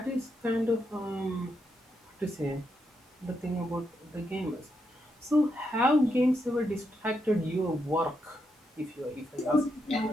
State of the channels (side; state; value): both; normal; correlation 0.82